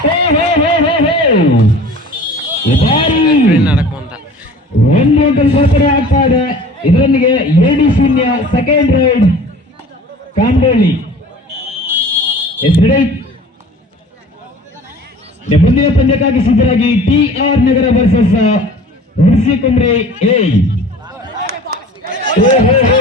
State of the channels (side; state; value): both; normal; correlation 0.44